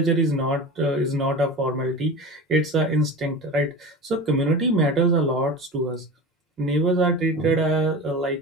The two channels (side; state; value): both; normal; correlation 0.31